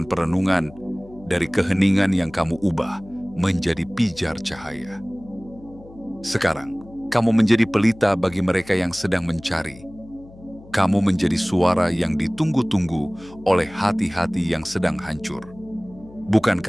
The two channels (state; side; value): noise; left; hum, 21 dB below the sound